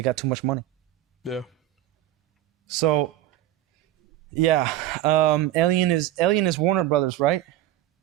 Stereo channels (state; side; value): quieter; left; 14.0 dB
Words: too much money. Yeah. So, yeah, Alien is Warner Brothers, right?